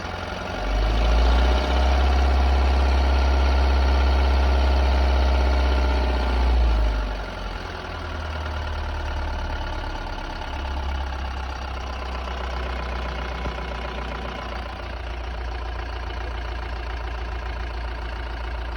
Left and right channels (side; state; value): both; identical; correlation 1.00